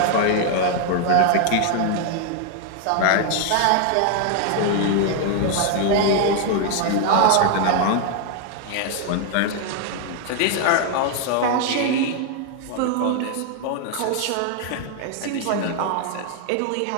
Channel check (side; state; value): both; different; correlation 0.00